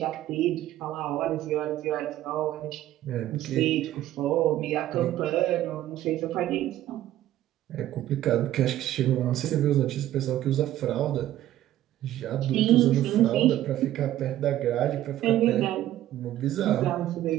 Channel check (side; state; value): left; quieter; 13.4 dB